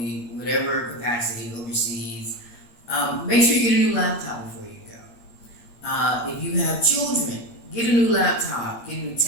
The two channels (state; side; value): late; right; 8.6 ms